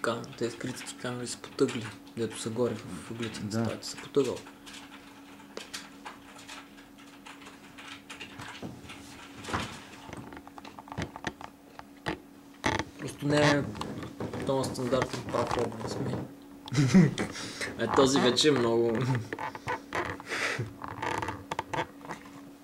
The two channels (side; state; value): both; identical; correlation 1.00